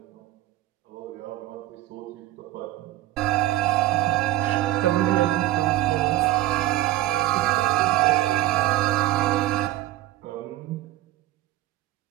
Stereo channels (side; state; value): left; quieter; 15.6 dB